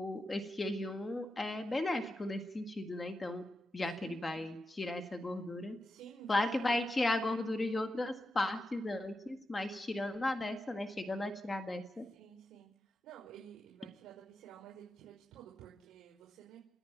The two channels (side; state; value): both; normal; correlation 0.89